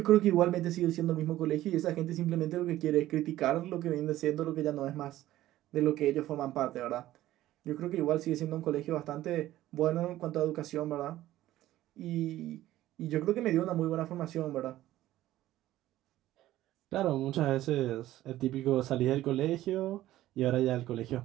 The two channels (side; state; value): left; quieter; 14.6 dB